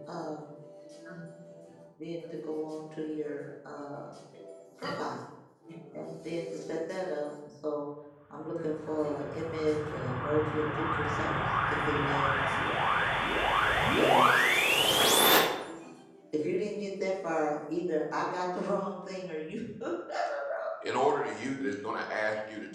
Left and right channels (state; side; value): identical; both; correlation 1.00